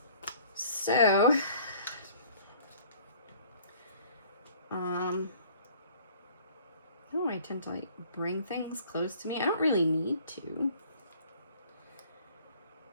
So, oh, I tend to like bring things close to me. I don't really need to.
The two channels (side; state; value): both; inverted; correlation -0.54